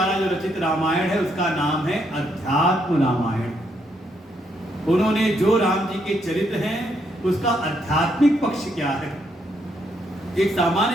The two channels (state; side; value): normal; both; correlation 0.75